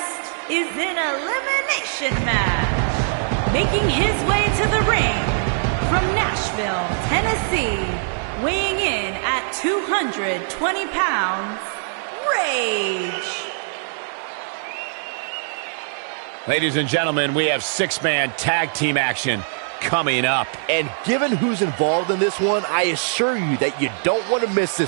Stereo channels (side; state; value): left; silent; 64 dB below the other